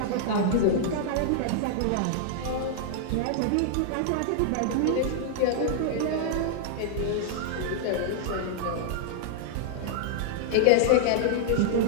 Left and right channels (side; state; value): both; different; correlation -0.01